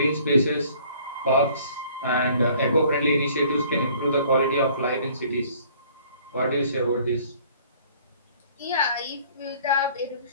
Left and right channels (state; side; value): inverted; both; correlation -0.56